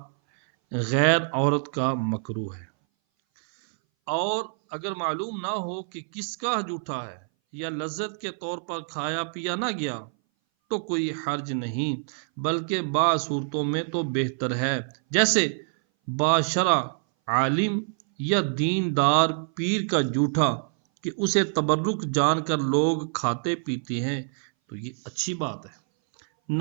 غیر عورت کا مکروہ ہے۔ اور اگر معلوم نہ ہو کہ کس کا جھوٹا ہے یا لذت کے طور پر کھایا پیا نہ گیا تو کوئی حرج نہیں، بلکہ بعض صورتوں میں تو بہتر ہے، جیسے باشرہ عالم یا دیندار پیر کا جھوٹا کہ اسے تبرک جان کر لوگ کھاتے پیتے ہیں، تو یہ اچھی بات ہے۔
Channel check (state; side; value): silent; left; 59 dB below the other